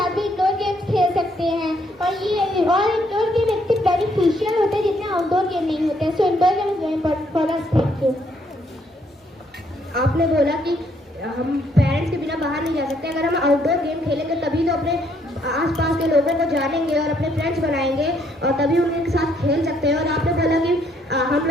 भी इंडोर गेम्स खेल सकते हैं। और इंडोर गेम इतने बेनिफिशियल होते हैं जितने आउटडोर गेम नहीं होते हैं। So indoor game is very important for us. Thank you. आपने बोला कि हम पेरेंट्स के बिना बाहर नहीं जा सकते। अगर हम आउटडोर गेम खेलेंगे तभी तो अपने आसपास के लोगों को जानेंगे और अपने फ्रेंड्स बनाएंगे और तभी उनके साथ खेल सकते हैं। और आपने बोला कि हम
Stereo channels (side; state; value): both; normal; correlation 0.69